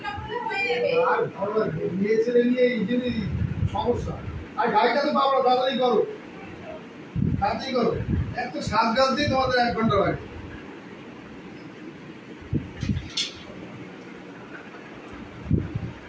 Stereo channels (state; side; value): identical; both; correlation 1.00